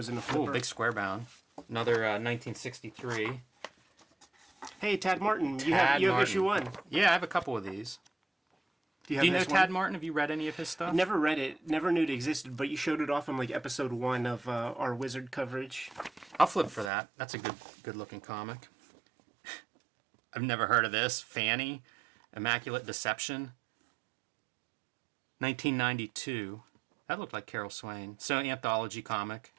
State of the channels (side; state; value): left; drops out; at 16.9 s